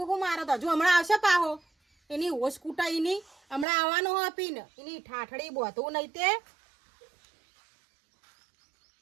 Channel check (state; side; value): drops out; left; at 3.7 s